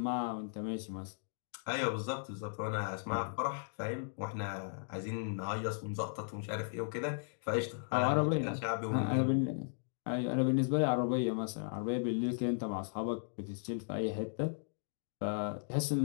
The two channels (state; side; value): silent; right; digital silence